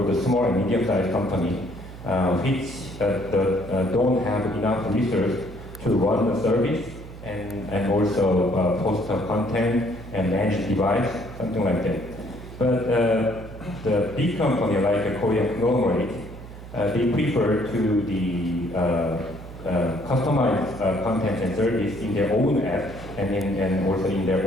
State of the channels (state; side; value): noise; right; hum, 14 dB below the sound